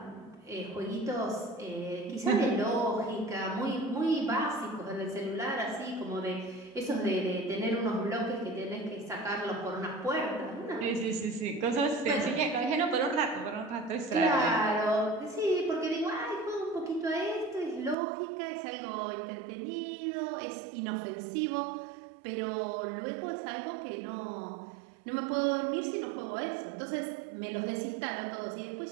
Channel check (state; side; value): drops out; left; at 17.9 s